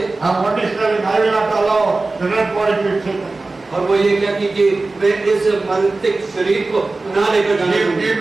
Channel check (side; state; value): left; quieter; 3.4 dB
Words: And one is telling, I will not allow the dead body to be taken. और वो ये कहती कि वे इस मृतिक शरीर को ना लेकर जाने Give दूंगी।